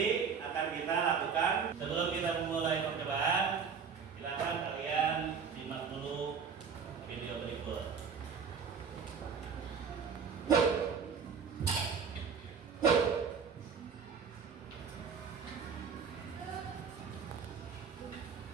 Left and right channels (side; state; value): left; quieter; 6.2 dB